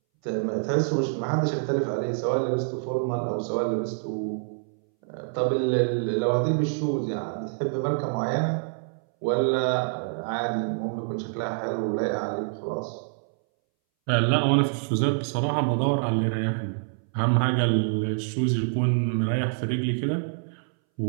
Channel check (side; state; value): left; silent; 61 dB below the other